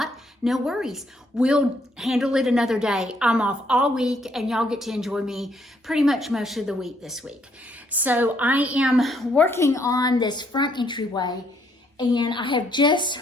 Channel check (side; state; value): both; normal; correlation 0.70